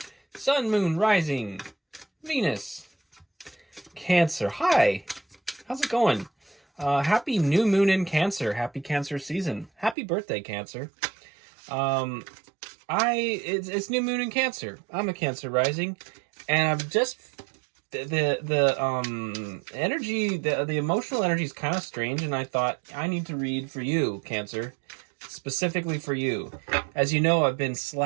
Sun, Moon, Rising, Venus. Cancer, hi! How's it going? Happy new moon in Cancer. Happy Cancer season. Happy birthday, Cancer. It's new moon in Cancer. I'm a Cancer rising, and I've just the energy, the emotional energy is kind of strange, and I thought I need to read for you, Cancer, specifically for you. As you know, I've been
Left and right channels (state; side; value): drops out; left; at 10.0 s